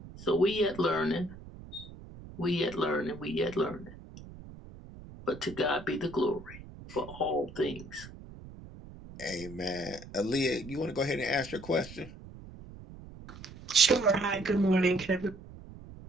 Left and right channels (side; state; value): right; noise; rumble, 16 dB below the sound